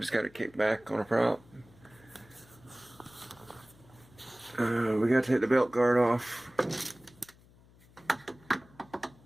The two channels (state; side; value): noise; left; hum, 26 dB below the sound